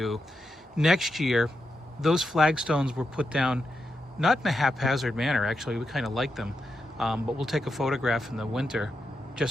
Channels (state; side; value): normal; both; correlation 0.86